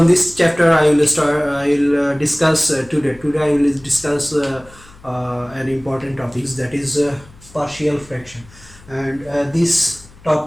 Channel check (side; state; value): left; noise; hum, 24 dB below the sound